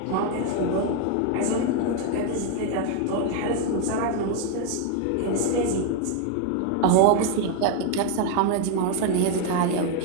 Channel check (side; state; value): both; different; correlation 0.01